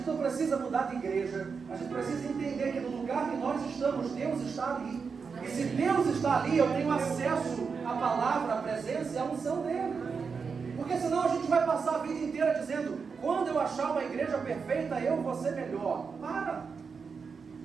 não precisa mudar de igreja. A gente precisa entender que no lugar que nós estamos, Deus está ali. E se Deus está ali, eu tenho acesso à palavra, à presença e à unção dele. Porque senão a gente vai passar a vida inteira dizendo: quando eu achar uma igreja perfeita, eu vou ser melhor. Para!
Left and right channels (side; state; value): left; quieter; 5.5 dB